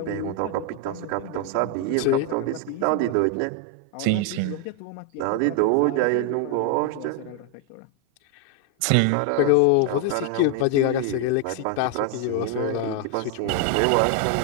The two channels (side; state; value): both; different; correlation 0.00